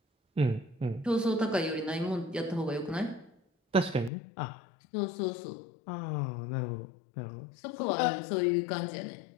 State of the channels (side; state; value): right; drops out; at 4.1 s